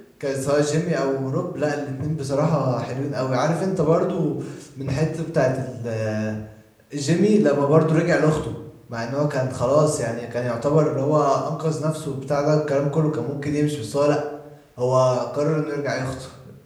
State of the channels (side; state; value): both; identical; correlation 1.00